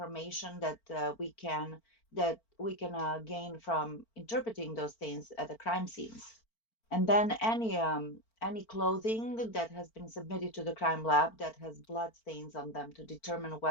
that we can gain from interpreting those things at the crime scenes. And then any clothing that has been submitted to the crime lab that has blood stains on them to determine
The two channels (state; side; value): late; right; 4.4 ms